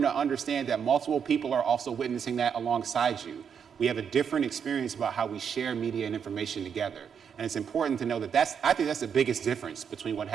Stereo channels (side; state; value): left; quieter; 7.3 dB